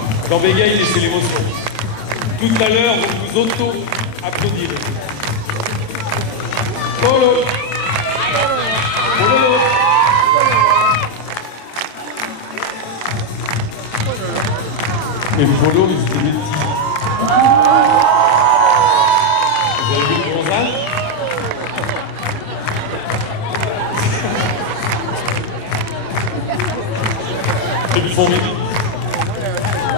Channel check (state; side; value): late; right; 27 ms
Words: Quand bégaye, laissez l'émotion. Tout à l'heure, vous vous auto-applaudirez. Et le polo, c'était des petits. Vous avez vu le bronzage? C'est du fond.